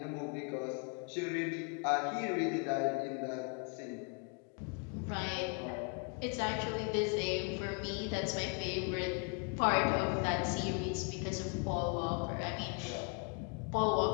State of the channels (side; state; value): right; quieter; 35.6 dB